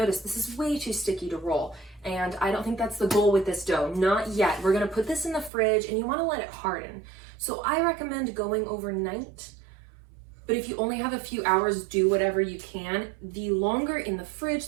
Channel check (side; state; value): left; drops out; at 5.5 s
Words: this is way too sticky to roll. And I don't think that's the goal with this dough, not yet. We're gonna put this in the fridge and you wanna let it harden. So I recommend going overnight, but if you only have a few hours, do whatever you can. The longer in the fridge,